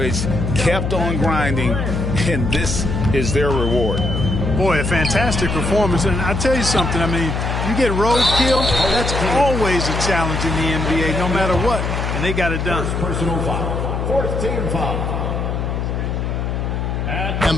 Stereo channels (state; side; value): noise; left; hum, 1 dB below the sound